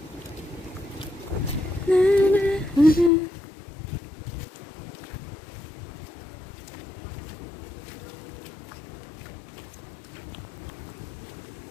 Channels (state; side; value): drops out; right; at 3.1 s